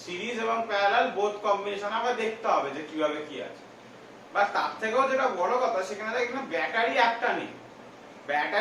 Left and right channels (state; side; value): identical; both; correlation 1.00